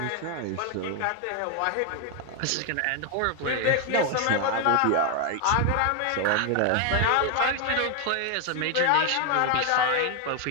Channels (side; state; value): both; different; correlation 0.01